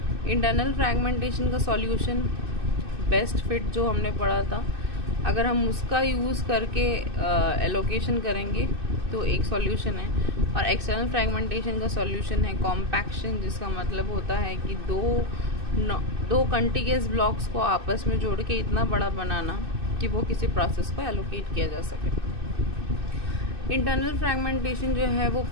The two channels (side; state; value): left; late; 2.6 ms